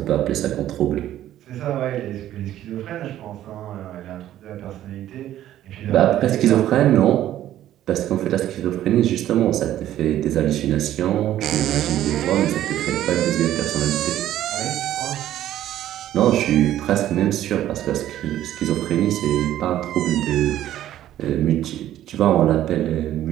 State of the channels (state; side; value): quieter; left; 12.6 dB